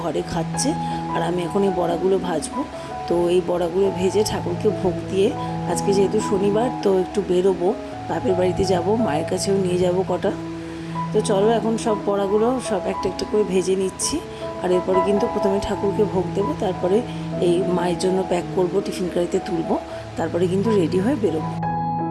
ঘরে খাচ্ছে। আর আমি এখন এই বড়াগুলো ভাজবো। তো এই বড়াগুলো ভেজে ঠাকুরকে ভোগ দিয়ে, আজকে যেহেতু শনিবার তো একটু বেরোবো, বাপের বাড়িতে যাব, মায়ের কাছেও নিয়ে যাব কটা। তো চলো এখন সব বড়াগুলো সব একটা একটা করে ভেজে নিচ্ছি। আর এরপরে কিন্তু প্রথমে ঠাকুরকে ভোগ দেবো, তারপরে এই মায়ের জন্য প্যাক করব, টিফিন কারিতে তুলবো, তারপরে কিন্তু রেডি হয়ে বেরোবো।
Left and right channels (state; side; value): identical; both; correlation 1.00